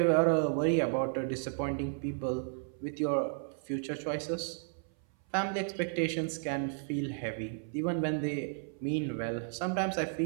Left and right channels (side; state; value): left; silent; 56 dB below the other